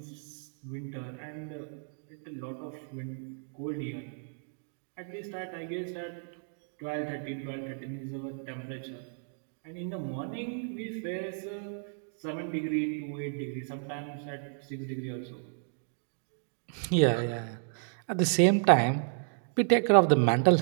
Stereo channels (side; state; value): left; silent; digital silence